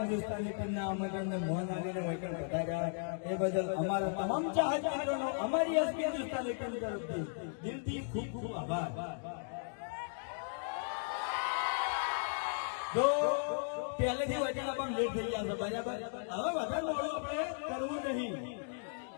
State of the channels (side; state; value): right; silent; digital silence